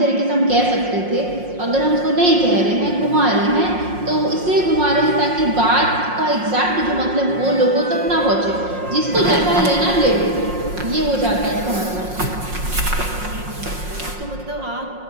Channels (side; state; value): left; late; 5.6 ms